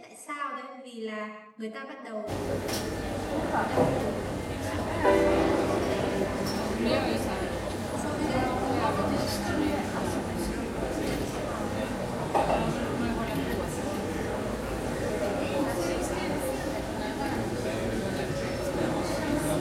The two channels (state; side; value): identical; both; correlation 1.00